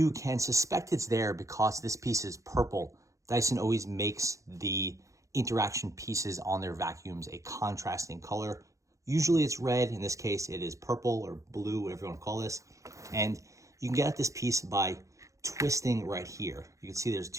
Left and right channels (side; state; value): left; late; 0.15 ms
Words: can suspect it's there because this piece is purple. Dyson always makes the interaction pieces on their vacuums a contrasting color. Usually it's red. In this case, it is purple or blue, whatever you want to call this. And you can get at this piece by twisting right here. You can see there's